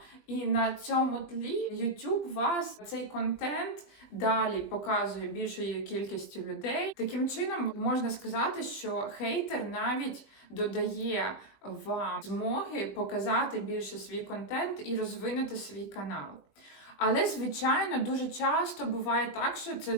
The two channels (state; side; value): late; right; 21 ms